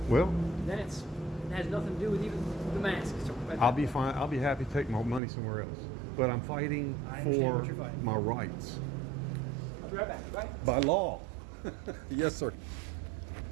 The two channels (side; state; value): left; drops out; at 5.2 s